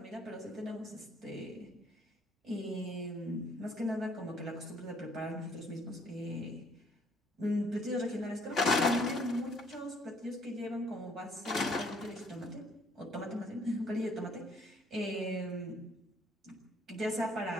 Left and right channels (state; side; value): normal; both; correlation 0.63